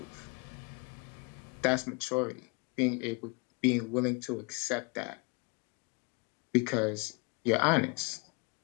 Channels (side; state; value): right; quieter; 31.7 dB